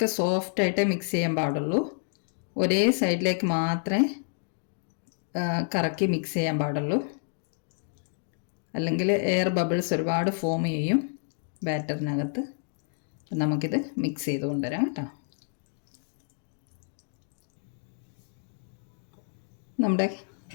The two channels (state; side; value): silent; right; digital silence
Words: സോഫ്റ്റായിട്ടേ മിക്സ് ചെയ്യാൻ പാടുള്ളൂ. ഒരേ സൈഡിലേക്ക് മാത്രമേ കറക്കി മിക്സ് ചെയ്യാൻ പാടുള്ളൂ. അല്ലെങ്കിൽ എയർ ബബിൾസ് ഒരുപാട് ഫോം ചെയ്യും ബാറ്ററിനകത്ത്. അപ്പം നമുക്കിത് മിക്സ് ചെയ്ത് കൊണ്ടുവരാം കേട്ടോ. നമ്മുടെ